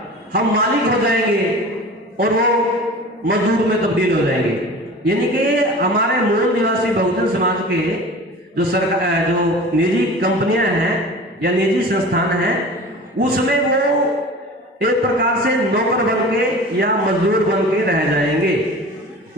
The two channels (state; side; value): normal; both; correlation 0.38